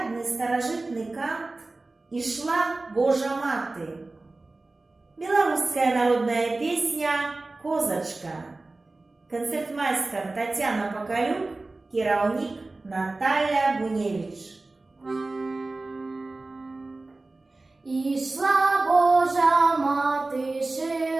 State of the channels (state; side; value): quieter; left; 3.2 dB